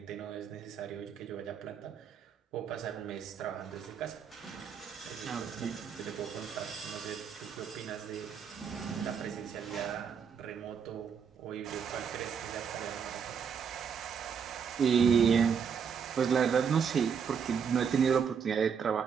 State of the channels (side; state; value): left; quieter; 6.9 dB